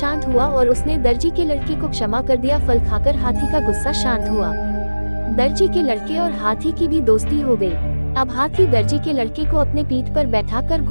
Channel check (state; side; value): inverted; both; correlation -1.00